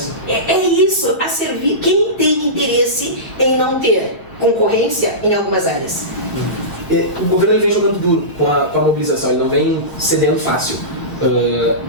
É isso, a servir quem tem interesse em não ter concorrência em algumas áreas. O governo ele vem jogando duro com a mobilização, ele não vem cedendo fácil.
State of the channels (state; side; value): normal; both; correlation -0.20